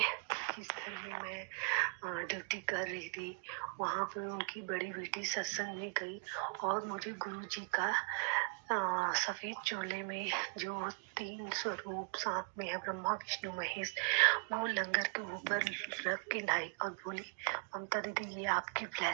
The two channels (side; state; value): left; silent; 52 dB below the other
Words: जिस घर में मैं ड्यूटी कर रही थी वहां पे उनकी बड़ी बेटी सत्संग में गई और मुझे गुरु जी का सफेद चोले में जो 3 स्वरूप साथ में है, ब्रह्मा विष्णु महेश, वो लंगर के ऊपर रख के लाई और बोली, ममता दीदी ये आपकी